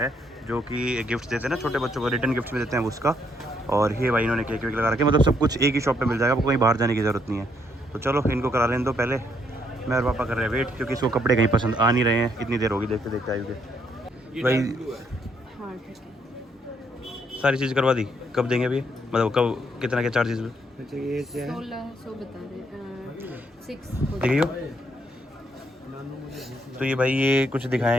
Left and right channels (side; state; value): both; normal; correlation 0.72